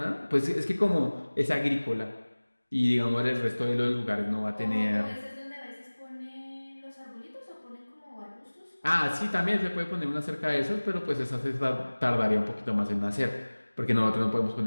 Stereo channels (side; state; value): both; inverted; correlation -1.00